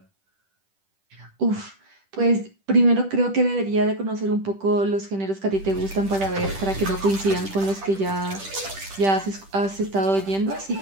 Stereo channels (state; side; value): late; left; 10 ms